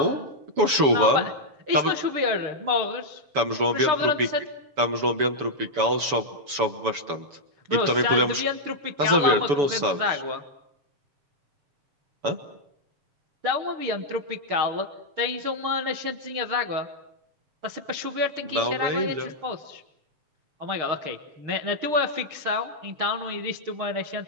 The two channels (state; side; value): late; left; 7.0 ms